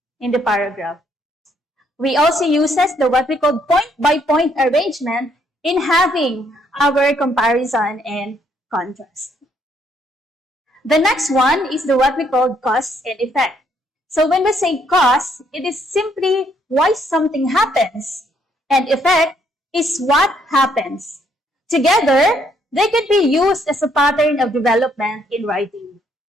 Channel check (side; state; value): both; normal; correlation 0.70